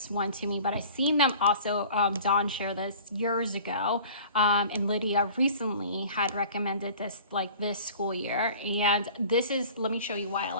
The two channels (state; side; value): inverted; both; correlation -0.45